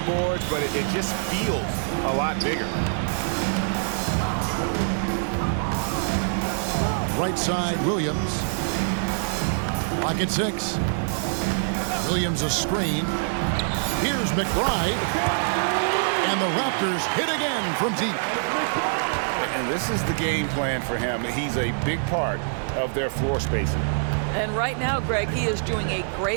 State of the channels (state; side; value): silent; left; digital silence